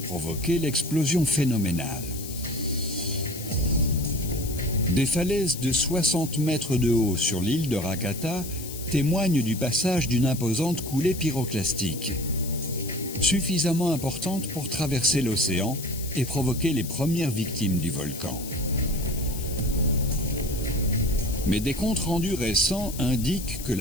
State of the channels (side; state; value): left; noise; hiss, 11 dB below the sound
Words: provoqué l'explosion phénoménale. Des falaises de 60 mètres de haut sur l'île de Rakata témoignent du passage d'une imposante coulée pyroclastique, suffisamment importante pour traverser l'océan et provoquer les premières victimes du volcan. Mais des comptes rendus récents indiquent que